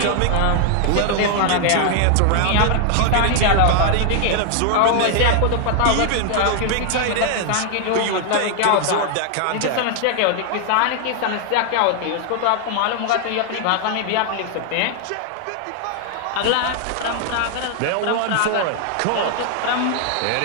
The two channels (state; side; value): different; both; correlation 0.00